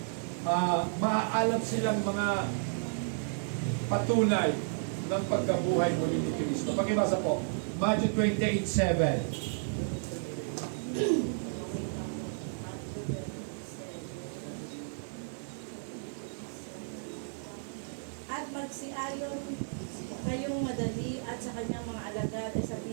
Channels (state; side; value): silent; left; 56 dB below the other